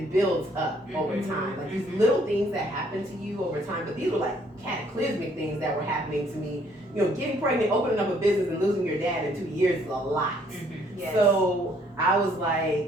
builds up over time. Like these little things that happen to you over time, but these were like cataclysmic things that were happening to me. You know, getting pregnant, opening up a business, and losing your dad in 2 years is a lot. Yes. So I was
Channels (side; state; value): both; normal; correlation 0.64